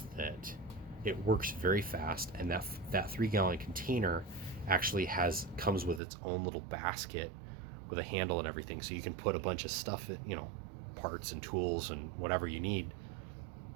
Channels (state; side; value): drops out; left; at 6.0 s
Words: that it works very fast, and that 3-gallon container actually comes with its own little basket with a handle and everything, so you can put a bunch of stuff, parts and tools and whatever you need